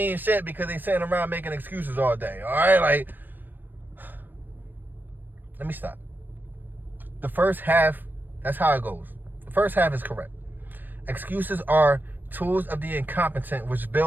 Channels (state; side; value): late; left; 0.089 ms